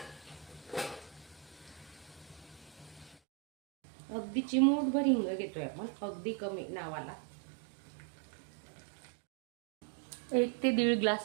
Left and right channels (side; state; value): left; drops out; at 3.2 s